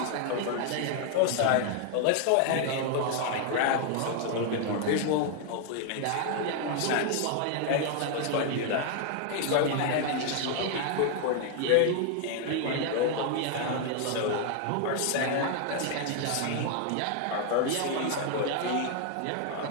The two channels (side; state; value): both; different; correlation 0.00